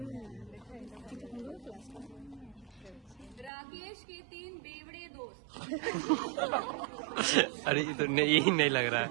राकेश के 3 बेवड़े दोस्त। अरे ये तो नहीं, यही नहीं लग रहा है।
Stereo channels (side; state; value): left; drops out; at 3.5 s